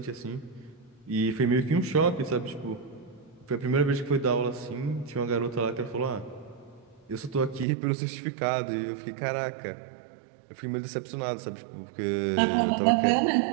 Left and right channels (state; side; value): drops out; left; at 7.7 s